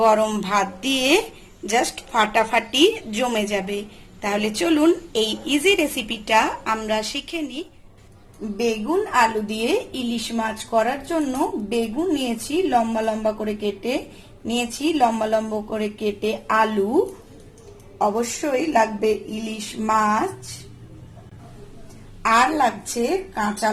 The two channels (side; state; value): both; identical; correlation 1.00